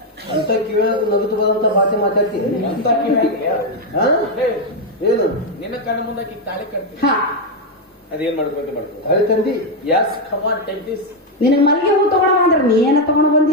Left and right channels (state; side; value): normal; both; correlation 0.04